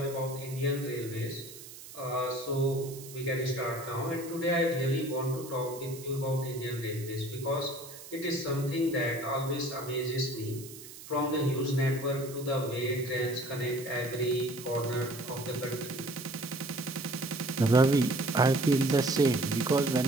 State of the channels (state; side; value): noise; right; hiss, 15 dB below the sound